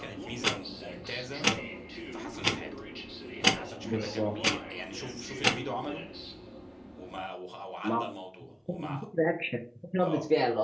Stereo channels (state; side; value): identical; both; correlation 1.00